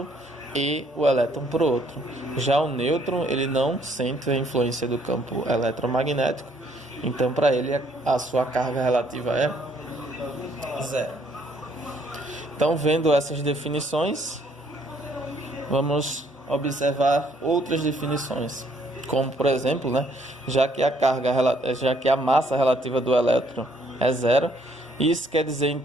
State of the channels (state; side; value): normal; both; correlation 0.66